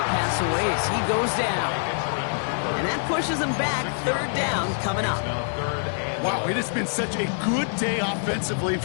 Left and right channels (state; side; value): silent; right; 62 dB below the other